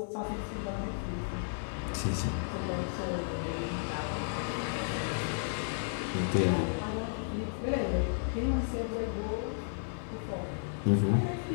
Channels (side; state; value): right; silent; digital silence